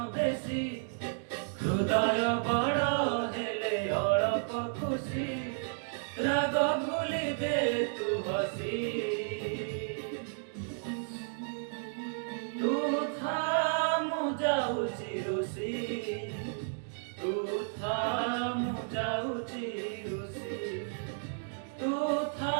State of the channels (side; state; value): left; silent; digital silence